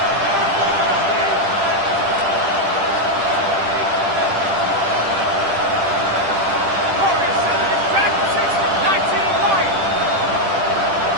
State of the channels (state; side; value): late; left; 10 ms